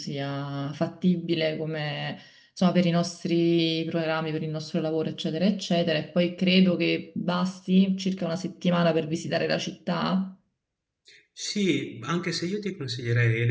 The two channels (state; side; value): identical; both; correlation 1.00